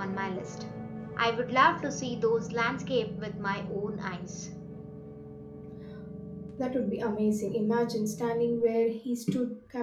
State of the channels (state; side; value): identical; both; correlation 1.00